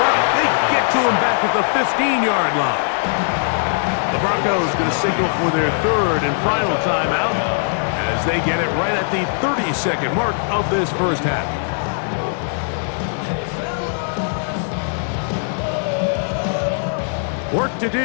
They get to him back at the 15-yard line. The Broncos going to signal for their third and final timeout as they get it right at the 30-second mark of this first half. Work to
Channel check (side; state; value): right; silent; digital silence